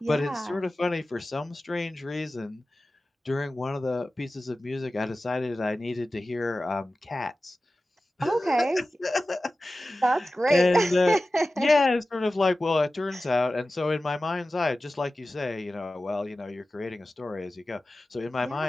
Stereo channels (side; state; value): both; normal; correlation 0.95